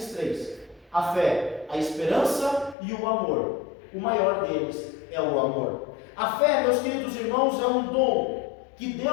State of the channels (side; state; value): right; drops out; at 2.8 s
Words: 3: a fé, a esperança e o amor. O maior deles é o amor. A fé, meus queridos irmãos, é um dom que